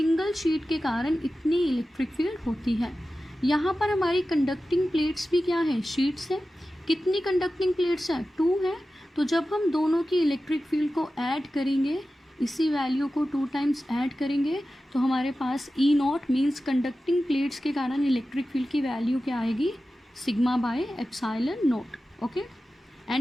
शीट के कारण इतनी इलेक्ट्रिक फील्ड होती है। यहाँ पर हमारी कंडक्टिंग प्लेट्स भी क्या है, शीट्स है। कितनी कंडक्टिंग प्लेट्स है, 2 है। तो जब हम दोनों की इलेक्ट्रिक फील्ड को ऐड करेंगे, इसी वैल्यू को 2 टाइम्स ऐड करेंगे, तो हमारे पास E naught means conducting plates के कारण इलेक्ट्रिक फील्ड की वैल्यू क्या आएगी, sigma by epsilon naught. Okay,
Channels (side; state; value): both; normal; correlation 0.94